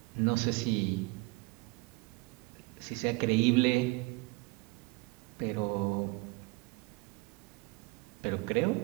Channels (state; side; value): quieter; left; 23.9 dB